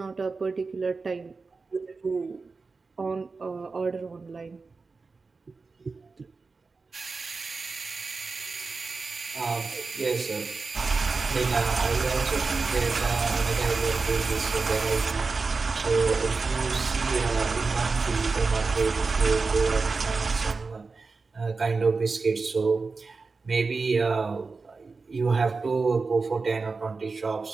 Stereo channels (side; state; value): left; quieter; 4.2 dB